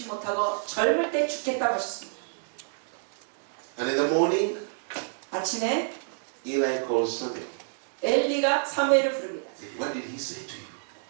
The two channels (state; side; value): silent; left; digital silence